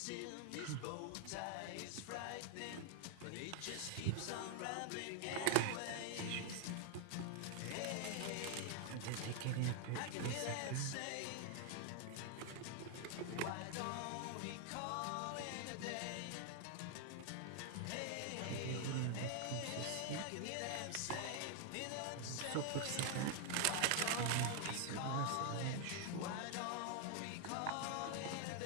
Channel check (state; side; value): different; both; correlation 0.00